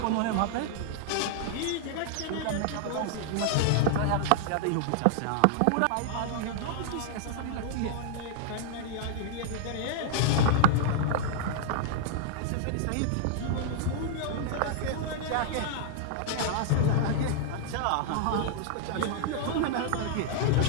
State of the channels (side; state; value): both; different; correlation -0.01